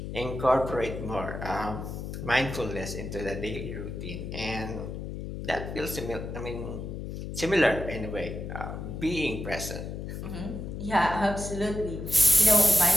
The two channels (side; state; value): left; noise; hum, 7 dB below the sound